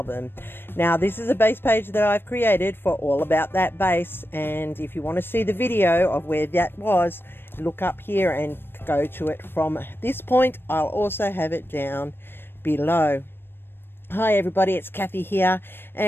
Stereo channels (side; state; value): right; late; 0.10 ms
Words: Now, this is a base page that I've created for All About That Base, and if you want to see the video of where that was, look up here and go to it from this point. I'll also have it down below. Hi everybody, it's Kathy here,